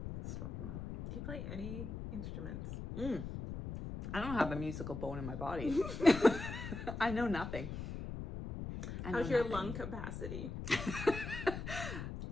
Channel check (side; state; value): left; noise; rumble, 6 dB below the sound